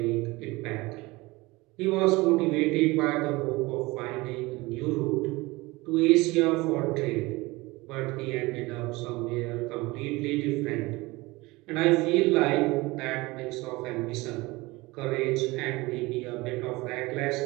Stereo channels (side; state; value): left; quieter; 22.1 dB